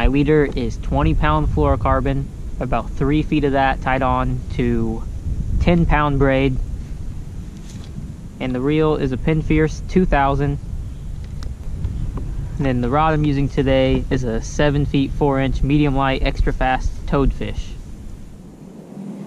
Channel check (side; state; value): both; identical; correlation 1.00